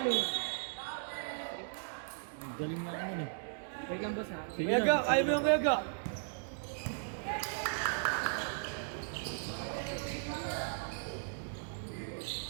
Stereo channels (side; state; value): left; silent; digital silence